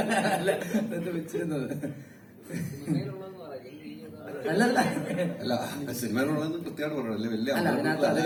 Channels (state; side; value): identical; both; correlation 1.00